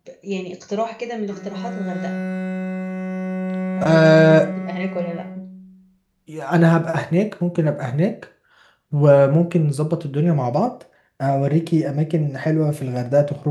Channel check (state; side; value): identical; both; correlation 1.00